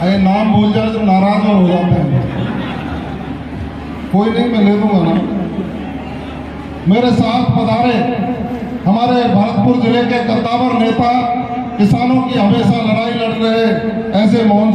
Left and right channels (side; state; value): both; identical; correlation 1.00